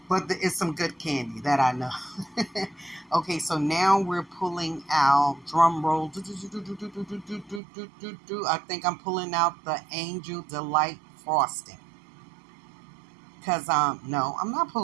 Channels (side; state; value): left; drops out; at 7.6 s